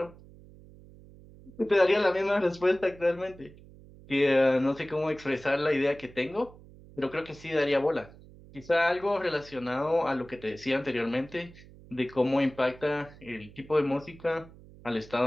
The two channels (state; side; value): noise; right; hum, 21 dB below the sound